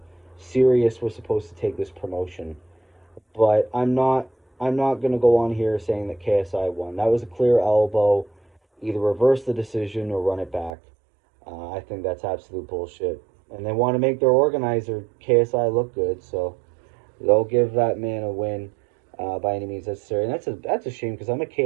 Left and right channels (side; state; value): left; drops out; at 10.7 s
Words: serious we're supposed to take this promotion. But I'm not gonna go on here saying that KSI won. That was a clear elbow. Either reverse the decision or run it back. I think that's absolute bullshit. And they want to make their organizer KSI look good, so they'll give that man a win by any means necessary. And that's a shame, because I'm a